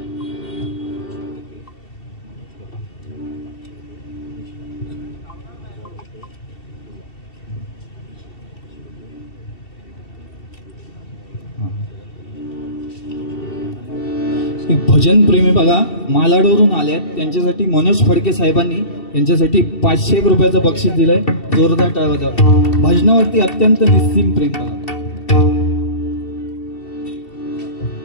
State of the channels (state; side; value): late; right; 2.7 ms